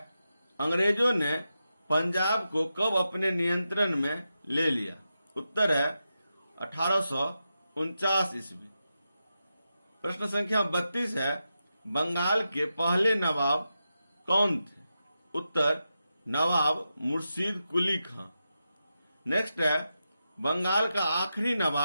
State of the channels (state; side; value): inverted; both; correlation -0.89